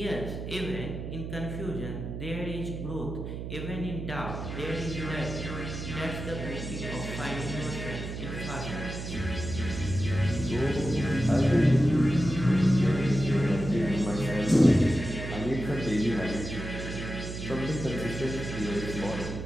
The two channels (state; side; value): noise; right; hum, 7 dB below the sound